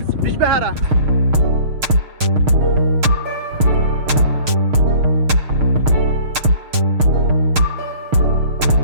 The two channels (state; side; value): late; left; 6.6 ms